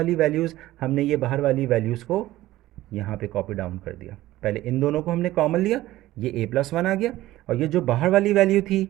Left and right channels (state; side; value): quieter; left; 16.0 dB